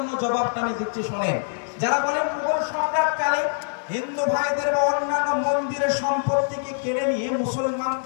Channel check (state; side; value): silent; right; digital silence